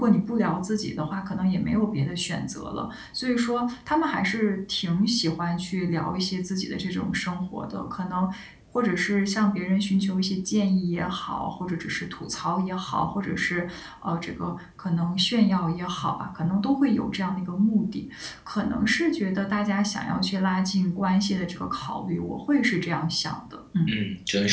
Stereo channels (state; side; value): identical; both; correlation 1.00